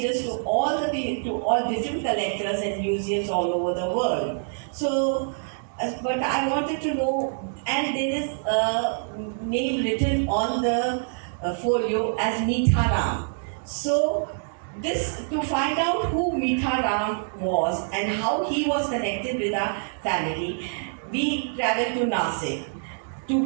to all different collectors and museums all over the world. So, but I wanted to know, and there is a name written on the folio as Mitharam. So, this to find out who Mitharam was and how he was connected with our family, we traveled to Nasik, to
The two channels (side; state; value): left; silent; digital silence